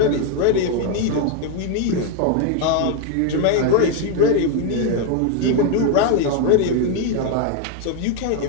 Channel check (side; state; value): both; different; correlation 0.01